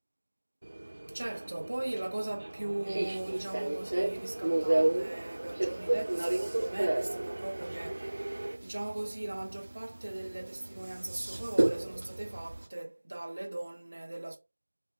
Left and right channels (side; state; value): both; inverted; correlation -1.00